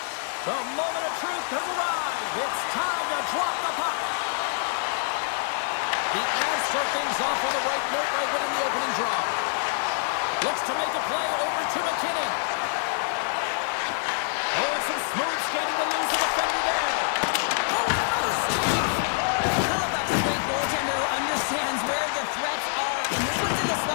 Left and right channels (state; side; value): silent; right; digital silence